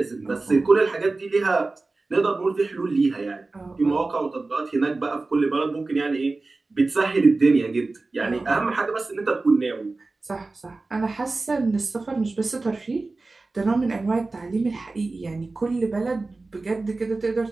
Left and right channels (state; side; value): quieter; left; 3.5 dB